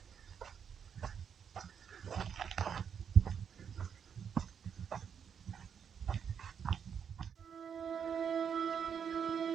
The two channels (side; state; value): left; quieter; 7.5 dB